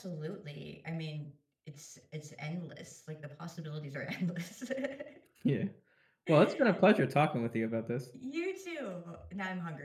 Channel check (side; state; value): both; identical; correlation 1.00